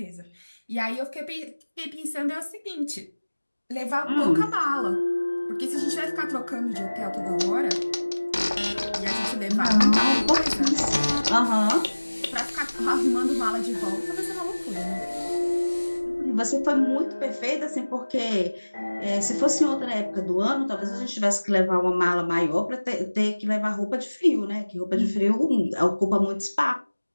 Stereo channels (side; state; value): both; inverted; correlation -1.00